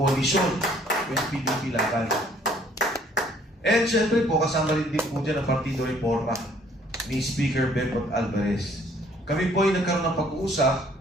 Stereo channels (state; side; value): normal; both; correlation 0.60